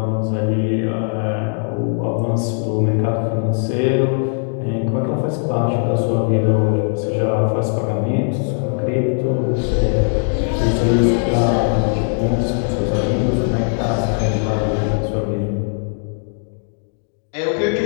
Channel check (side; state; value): right; silent; 64 dB below the other